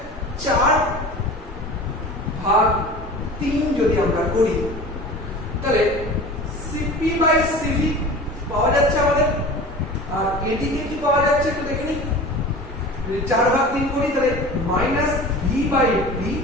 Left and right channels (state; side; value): normal; both; correlation 0.37